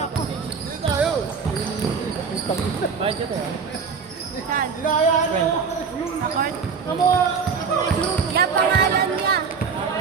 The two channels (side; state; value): left; quieter; 5.7 dB